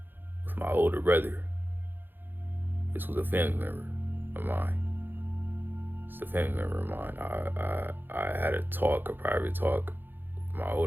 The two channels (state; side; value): late; left; 0.096 ms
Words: with my older brother. This was a family member of mine. It's a family member of mine. I had a private talk with my